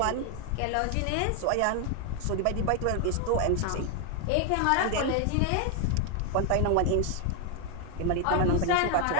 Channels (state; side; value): different; both; correlation 0.00